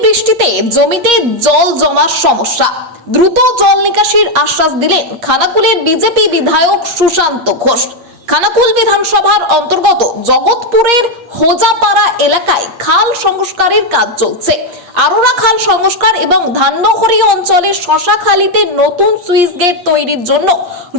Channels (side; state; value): left; late; 8.6 ms